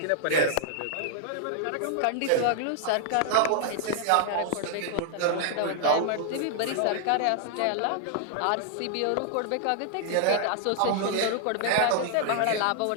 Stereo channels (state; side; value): different; both; correlation 0.00